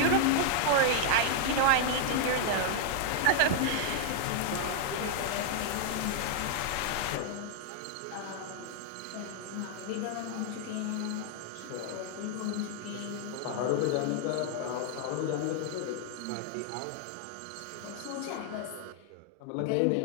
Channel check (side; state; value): both; different; correlation 0.00